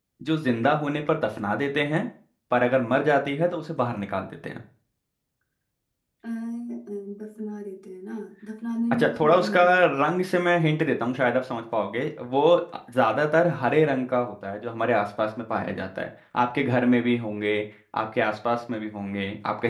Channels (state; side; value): identical; both; correlation 1.00